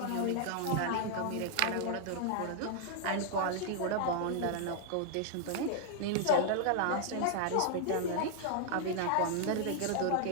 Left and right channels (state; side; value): different; both; correlation -0.01